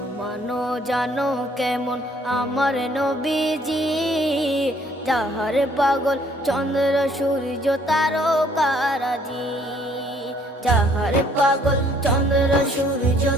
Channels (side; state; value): both; normal; correlation 0.62